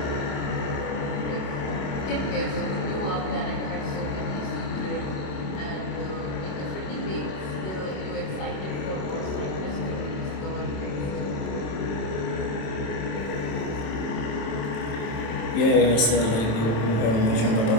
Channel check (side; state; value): right; late; 27 ms